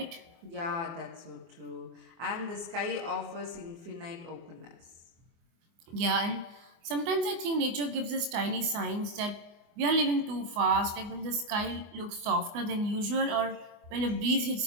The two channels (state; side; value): late; left; 24 ms